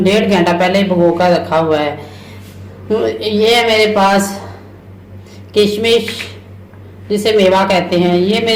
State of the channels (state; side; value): identical; both; correlation 1.00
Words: घंटा पहले भिगो कर रखा हुआ है। ये है मेरे पास किशमिश, जिसे मेवा कहते हैं। ये